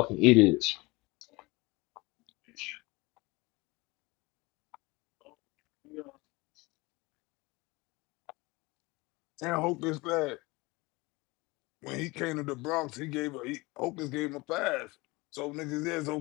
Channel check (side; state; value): right; quieter; 23.4 dB